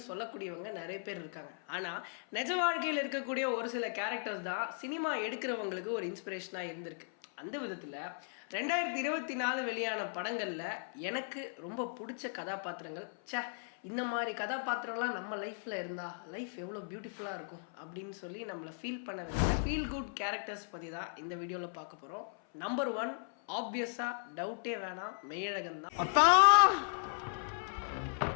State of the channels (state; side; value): silent; right; 53 dB below the other